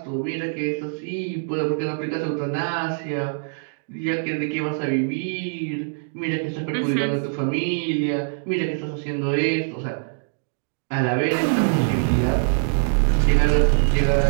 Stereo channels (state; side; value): silent; left; digital silence